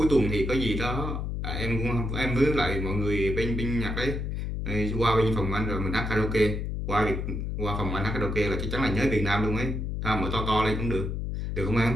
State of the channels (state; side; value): noise; left; hum, 3 dB below the sound